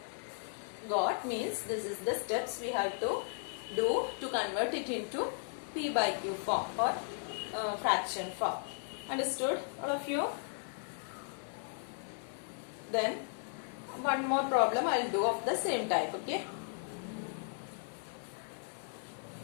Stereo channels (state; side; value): silent; right; 54 dB below the other